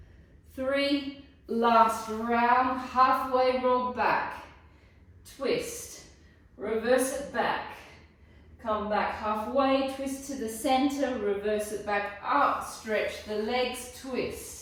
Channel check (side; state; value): both; identical; correlation 1.00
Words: 3. Last round. Halfway roll back. Twist. Reverse it back. Come back halfway. Twist to the center. Reverse it back up. Stretch the legs.